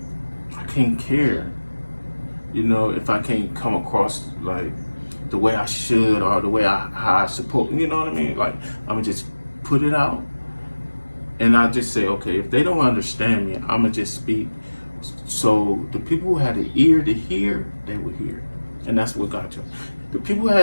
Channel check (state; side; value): inverted; both; correlation -1.00